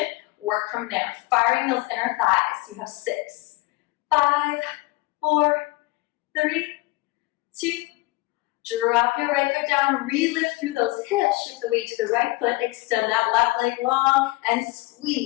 Work from there. Firing those inner thighs. You have 6, 5, 4, 3, 2. Drop your right foot down. Re-lift through those hips. Shift the weight to the right foot. Extend that left leg long and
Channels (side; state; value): right; quieter; 21.9 dB